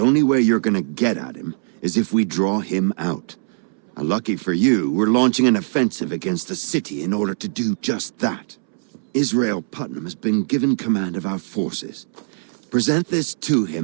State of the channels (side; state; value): left; silent; 65 dB below the other